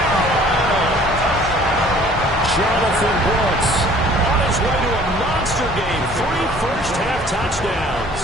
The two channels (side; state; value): both; normal; correlation 0.53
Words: Jonathan Brooks on his way to a monster game. 3 first-half touchdowns.